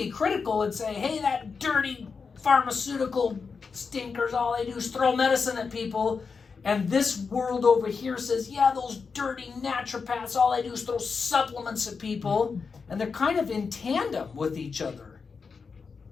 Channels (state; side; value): quieter; right; 5.2 dB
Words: critical and say, hey, that dirty pharmaceutical stinkers, all they do is throw medicine at people. And this world over here says, yeah, those dirty naturopaths, all they do is throw supplements at people. And they're kind of in tandem with each other,